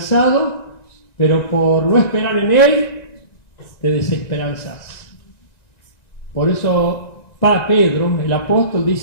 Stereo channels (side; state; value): right; late; 1.9 ms